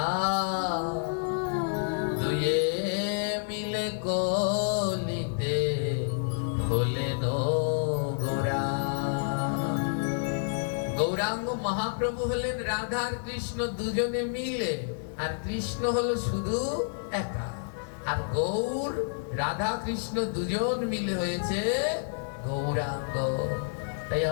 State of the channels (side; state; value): right; silent; 58 dB below the other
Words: দুয়ে মিলে কলিতে হলেন গোরা। গৌরাঙ্গ মহাপ্রভু হলেন রাধা আর কৃষ্ণ দুজনে মিলে, আর কৃষ্ণ হলো শুধু একা। আর গৌর, রাধা কৃষ্ণ দুজন মিলে হয়েছে গৌরাঙ্গ। তাই